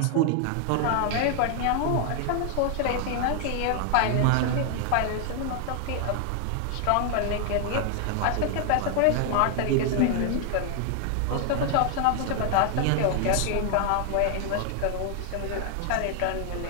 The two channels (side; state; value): both; different; correlation 0.00